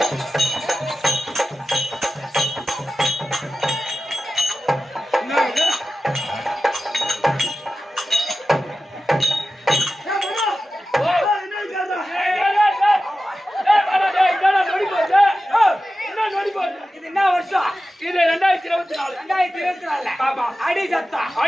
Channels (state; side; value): normal; both; correlation 0.94